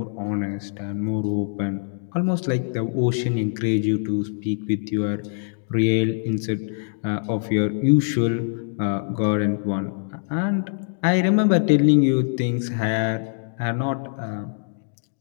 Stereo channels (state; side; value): silent; right; digital silence